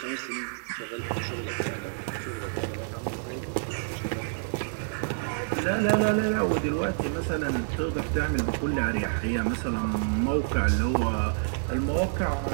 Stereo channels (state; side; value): silent; left; digital silence